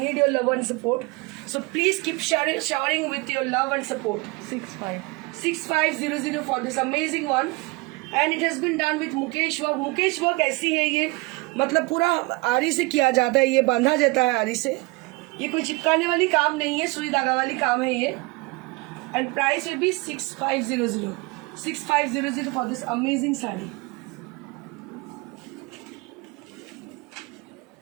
need your love and support, so please keep sharing with your love and support। 6500 for this amazing one and it has been done with Mukesh work. Mukesh work ऐसी है ये, मतलब पूरा आरी से किया जाता है, ये बांधा जाता है आरी से। ये कोई चिपकाने वाली काम नहीं है, सुई धागा वाली काम है ये। And price will B 6500 for this amazing sari.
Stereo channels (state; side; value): quieter; left; 25.4 dB